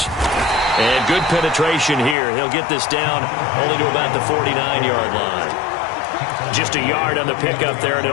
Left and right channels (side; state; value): right; drops out; at 2.1 s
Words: And good penetration here. He'll get this down only to about the 49-yard line. Just a yard on the pickup there, and